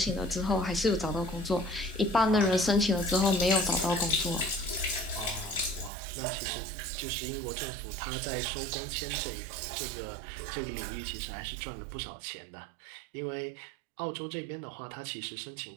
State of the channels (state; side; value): drops out; left; at 5.9 s